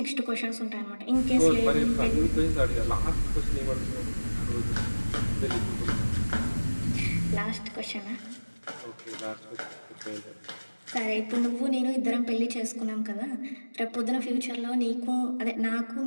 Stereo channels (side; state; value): both; inverted; correlation -1.00